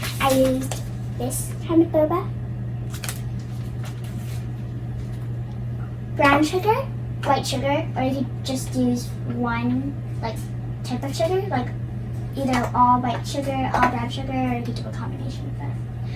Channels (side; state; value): both; identical; correlation 1.00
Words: I used this kind of boba. Brown sugar, white sugar, or you could just use one type of sugar, like either all white sugar, all brown sugar, or you could do a combination of